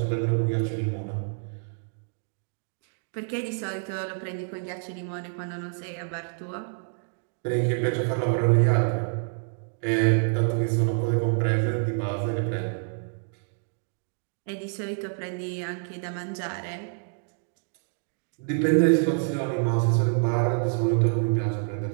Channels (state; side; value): silent; left; 60 dB below the other